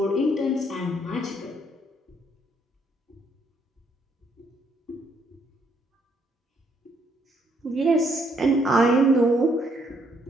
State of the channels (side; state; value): both; normal; correlation 0.71